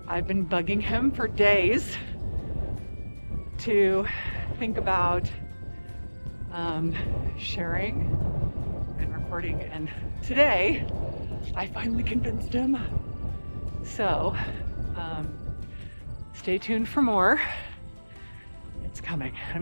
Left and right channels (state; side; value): inverted; both; correlation -1.00